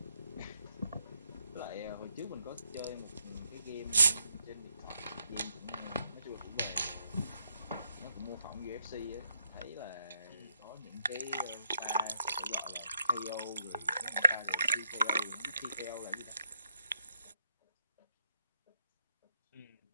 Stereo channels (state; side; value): inverted; both; correlation -0.77